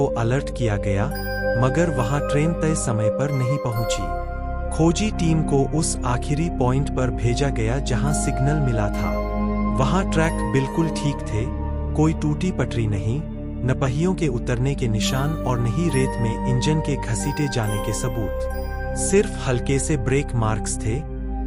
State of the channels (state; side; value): identical; both; correlation 1.00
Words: अलर्ट किया गया, मगर वहां ट्रेन तय समय पर नहीं पहुंची। खोजी टीम को उस आखिरी पॉइंट पर भेजा गया जहां सिग्नल मिला था। वहां ट्रैक बिल्कुल ठीक थे, कोई टूटी पटरी नहीं, न पहियों के उतरने के निशान और न ही रेत में इंजन के घसीटे जाने के सबूत। सिर्फ हल्के से ब्रेक मार्क्स थे,